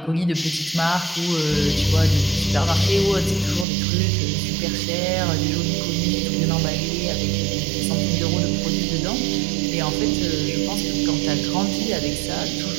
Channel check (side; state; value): left; drops out; at 3.7 s